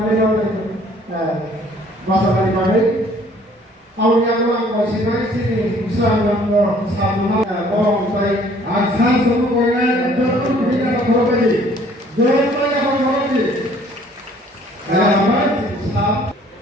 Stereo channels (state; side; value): normal; both; correlation 0.57